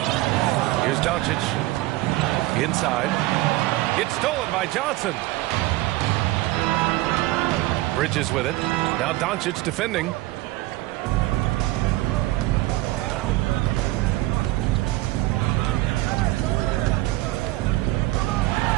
Here's Doncic. Inside. It's stolen by Johnson. Bridges with it. Now Doncic defending.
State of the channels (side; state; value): left; quieter; 18.4 dB